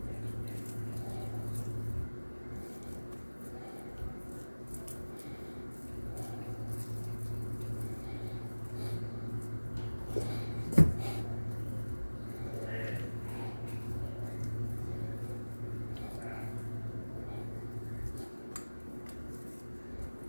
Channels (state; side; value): inverted; both; correlation -1.00